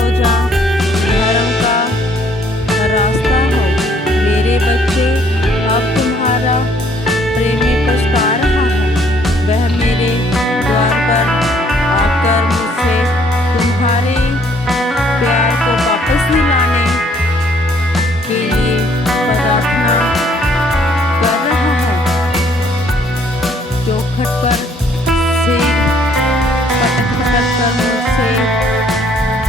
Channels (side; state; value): both; normal; correlation 0.63